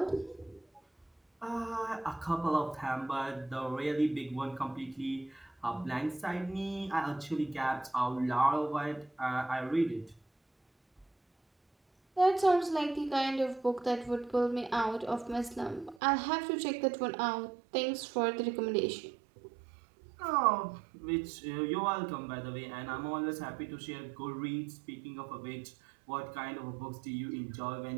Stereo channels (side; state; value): left; drops out; at 16.0 s